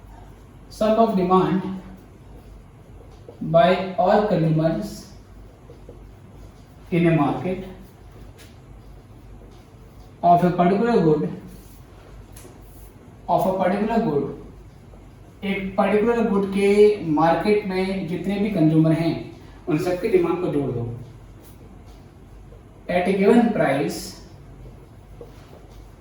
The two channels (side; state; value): both; identical; correlation 1.00